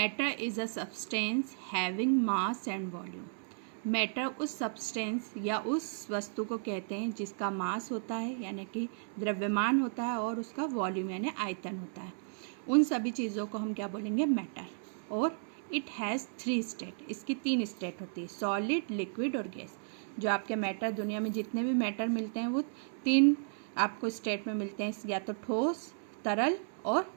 is a substance having mass and volume. Matter उस सब्सटेंस या उस वस्तु को कहते हैं जिसका मास होता है यानी कि द्रव्यमान होता है और उसका वॉल्यूम यानी आयतन होता है। उन सभी चीज़ों को हम क्या बोलेंगे, मैटर। और इट हैज़ 3 स्टेट, इसकी 3 स्टेट होती है, सॉलिड, लिक्विड और गैस। जो आपके मैटर, दुनिया में जितने भी मैटर मिलते हैं वो 3 आपको स्टेट में मिलते हैं, या तो ठोस, तरल और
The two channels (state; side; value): silent; left; 55 dB below the other